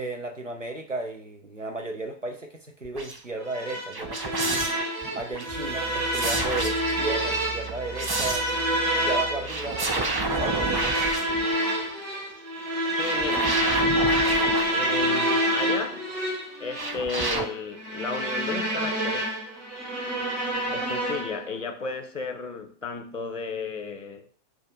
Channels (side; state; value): left; late; 1.1 ms